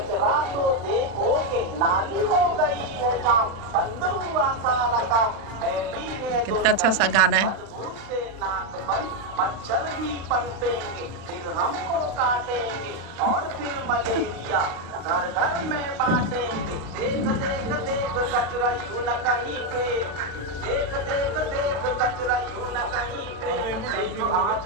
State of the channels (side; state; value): left; late; 35 ms